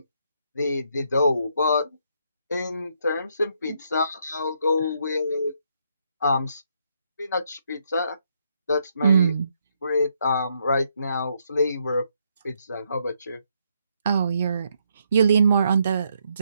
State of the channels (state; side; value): inverted; both; correlation -0.75